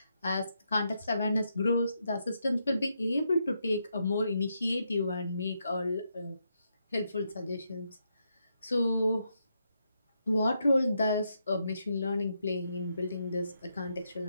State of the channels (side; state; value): both; inverted; correlation -0.81